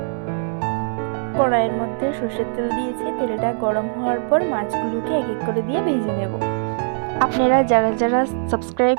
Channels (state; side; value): silent; left; 65 dB below the other